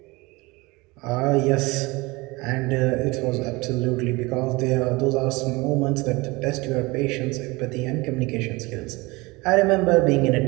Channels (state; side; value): quieter; left; 23.7 dB